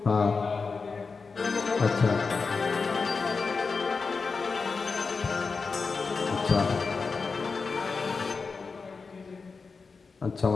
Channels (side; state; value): right; quieter; 4.7 dB